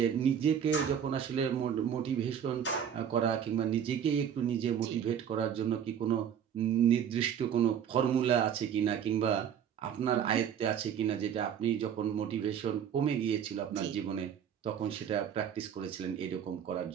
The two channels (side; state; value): left; quieter; 8.6 dB